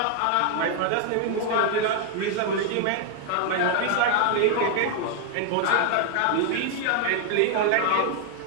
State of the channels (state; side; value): different; both; correlation 0.00